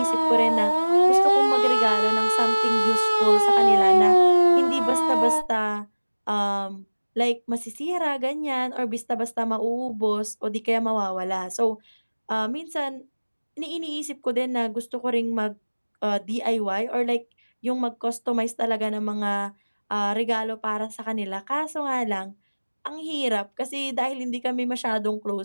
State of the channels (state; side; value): inverted; both; correlation -1.00